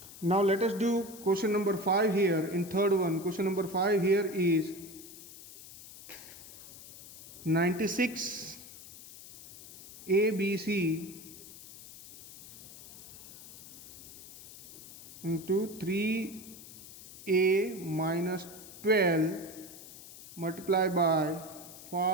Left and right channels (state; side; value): noise; left; hiss, 16 dB below the sound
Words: Now let us do question number 5 here in third one. Question number 5 here is 96 ABC into 3a minus 12 multiplied by